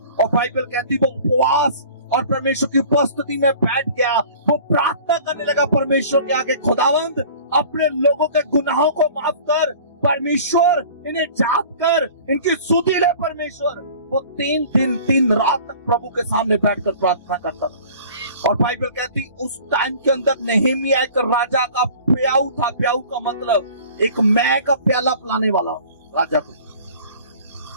और बाइबल कहती वो उपवास और परमेश्वर की उपस्थिति में बैठ गया। वो प्रार्थना करने लगा परमेश्वर के आगे, खुदावंद अपने लोगों के गुनाहों को माफ कर, परमेश्वर इन्हें जाप कर, इनकी सुधि ले परमेश्वर। वो 3 दिन 3 रात तक प्रभु के सामने बैठकर प्रार्थना करता था। और बाइबल कहती उस टाइम के अंदर नेहेमिया एक राजा का प्याऊ था। प्याऊ का मतलब एक मैं का प्याला पिलाने वाला राजा को।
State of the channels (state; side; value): inverted; both; correlation -0.46